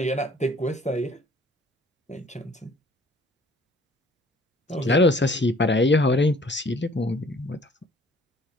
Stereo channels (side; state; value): both; normal; correlation 0.55